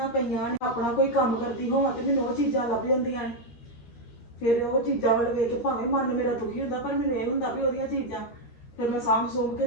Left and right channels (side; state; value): right; late; 13 ms